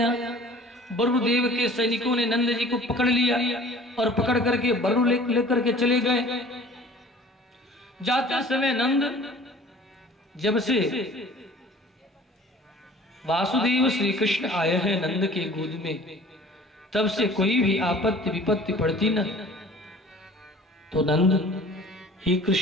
वरुणदेव के सैनिकों ने नंद जी को पकड़ लिया और पकड़ करके वरुण लेकर के चले गए। जाते समय नंद जब से वासुदेव श्री कृष्ण आए हैं नंद के गोद में, तब से कोई भी आपत्ति विपत्ति पड़ती न, तो नंद हे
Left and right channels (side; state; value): both; normal; correlation 0.48